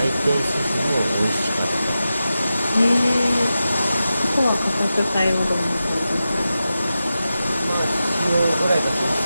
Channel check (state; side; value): inverted; both; correlation -0.92